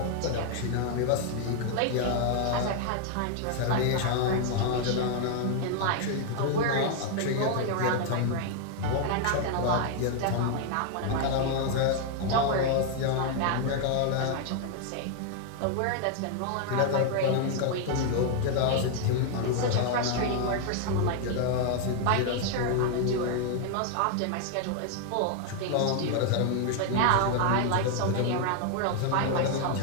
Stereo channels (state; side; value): different; both; correlation 0.00